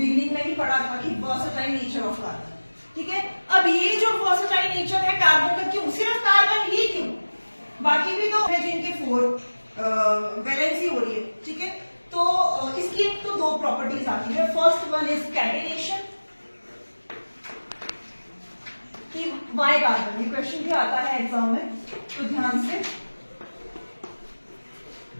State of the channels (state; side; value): inverted; both; correlation -1.00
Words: में ही पढ़ा था कि वर्सेटाइल नेचर ऑफ कार्बन, ठीक है। अब ये जो वर्सेटाइल नेचर है कार्बन का, क्यों सिर्फ कार्बन ही क्यों? बाकी भी तो है जिनके 4 वैलेंसी हो रही है, ठीक है। तो इसकी एक तो 2 प्रॉपर्टीज आती है। फर्स्ट वन इज कैटेनेशन, कि वाई कार्बन, ये क्वेश्चन भी आता है एग्जाम में, तो ध्यान से।